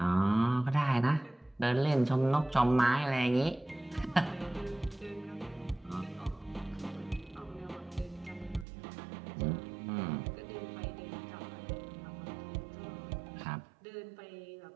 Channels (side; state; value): left; drops out; at 8.7 s